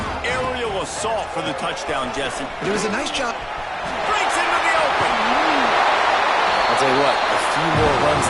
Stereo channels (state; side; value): identical; both; correlation 1.00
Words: aerial assault for the touchdown, Jesse. But it was a nice job. Breaks into the open. I'll tell you what, a few more runs